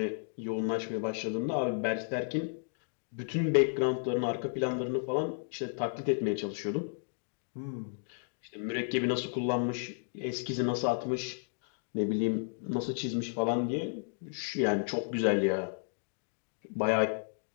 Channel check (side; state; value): right; silent; digital silence